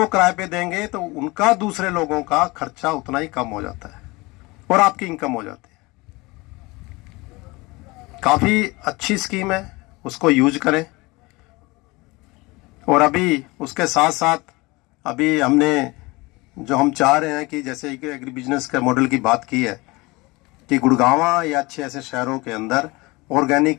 किराए पे देंगे तो उनका दूसरे लोगों का खर्चा उतना ही कम हो जाता है और आपकी इनकम हो जाती है। काफी अच्छी स्कीम है, उसको यूज करें। और अभी उसके साथ साथ अभी हमने जो हम चाह रहे हैं कि जैसे एग्री बिजनेस के मॉडल की बात की है कि गुड़गांव या अच्छे ऐसे शहरों के अंदर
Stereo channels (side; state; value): right; quieter; 23.5 dB